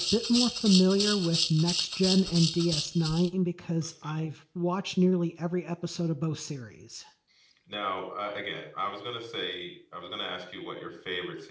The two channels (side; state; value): both; identical; correlation 1.00